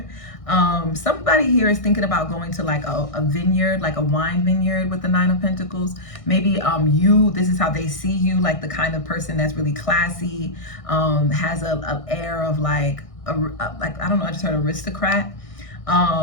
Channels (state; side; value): late; right; 1.6 ms